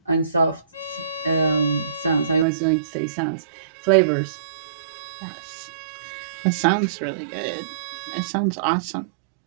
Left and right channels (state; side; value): drops out; left; at 2.5 s